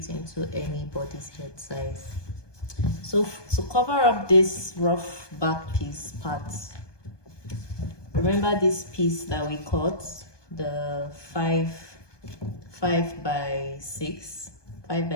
into anybody's head size. So to cover up this rough back piece part, remember this piece that we cut, the 5 by 6.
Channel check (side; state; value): right; late; 1.2 ms